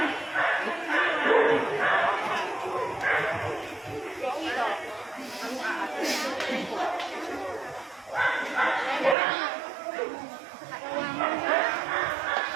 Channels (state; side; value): drops out; left; at 9.2 s